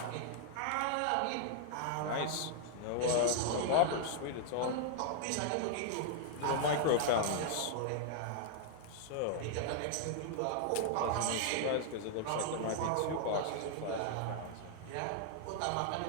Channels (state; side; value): different; both; correlation -0.01